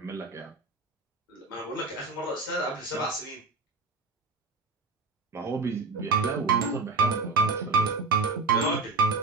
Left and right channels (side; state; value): left; quieter; 3.9 dB